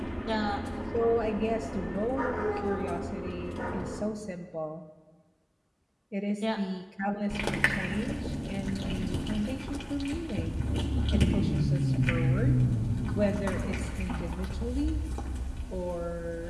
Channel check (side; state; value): both; identical; correlation 1.00